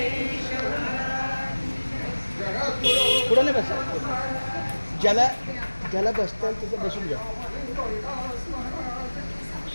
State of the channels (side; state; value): both; inverted; correlation -1.00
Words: पुढे नाही बस ज्याला बसता येईल तिथे बसून घ्या